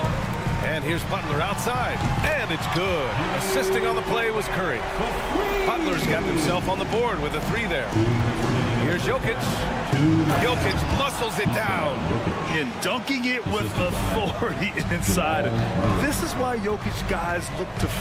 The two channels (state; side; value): identical; both; correlation 1.00